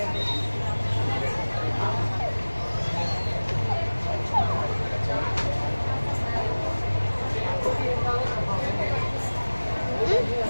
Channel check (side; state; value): both; inverted; correlation -1.00